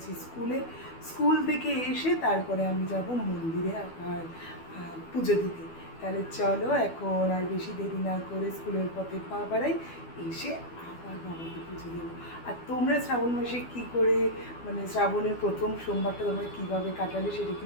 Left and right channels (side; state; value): right; late; 12 ms